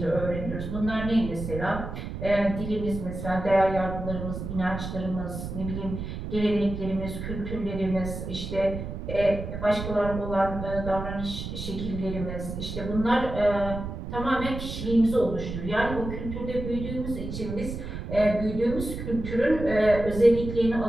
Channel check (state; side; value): noise; right; rumble, 7 dB below the sound